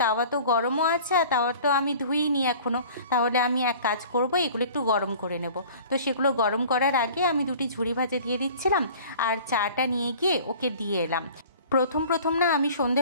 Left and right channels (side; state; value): both; inverted; correlation -0.46